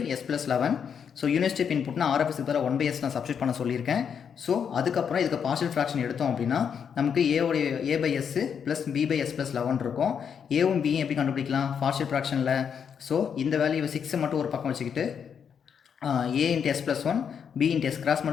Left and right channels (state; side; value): quieter; right; 7.3 dB